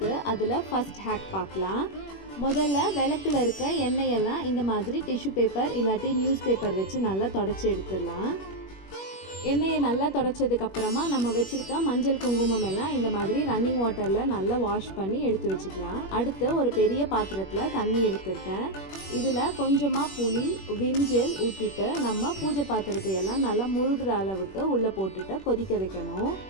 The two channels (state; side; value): late; right; 21 ms